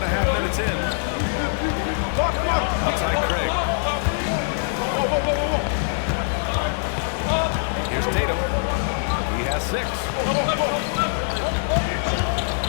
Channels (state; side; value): silent; right; digital silence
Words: minutes in. Outside Craig. Here's Tatum. He has 6.